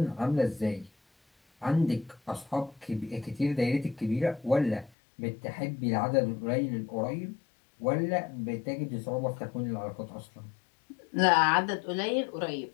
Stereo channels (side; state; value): right; drops out; at 4.9 s